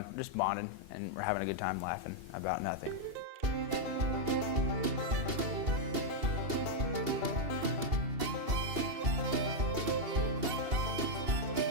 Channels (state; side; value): late; left; 2.8 ms